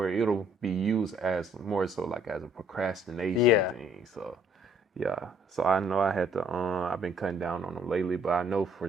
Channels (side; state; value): both; normal; correlation 0.63